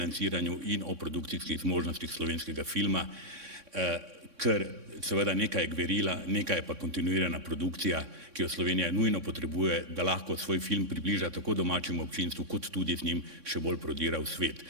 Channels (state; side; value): late; left; 3.6 ms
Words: in o produkcijskih zmožnostih slovenskega filma, ker seveda nekaj je gverila, nekaj je pa kontinuirana produkcija, ki jo Slovenija nujno potrebuje, da lahko svoj film približa tako domačemu občinstvu, kot tudi z njim še bolj prodira v svet.